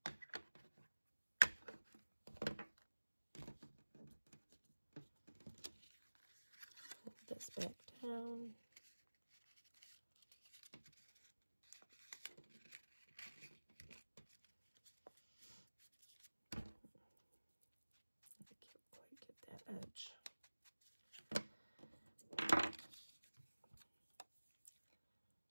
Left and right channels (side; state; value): both; inverted; correlation -1.00